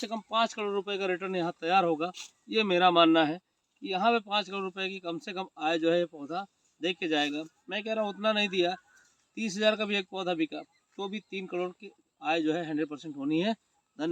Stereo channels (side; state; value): both; identical; correlation 1.00